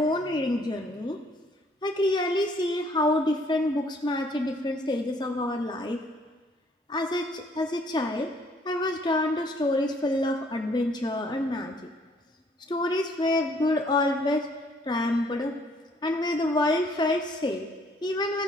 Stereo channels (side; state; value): both; normal; correlation 0.63